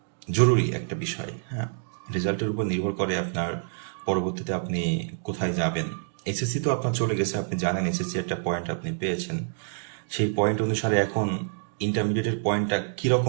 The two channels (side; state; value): left; silent; digital silence